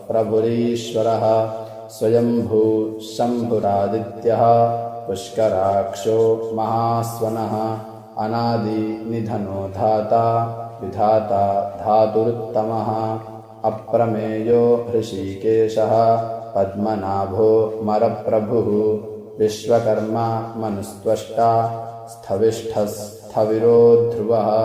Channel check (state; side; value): identical; both; correlation 1.00